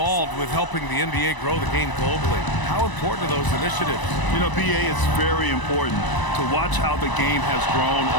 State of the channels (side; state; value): right; late; 1.0 ms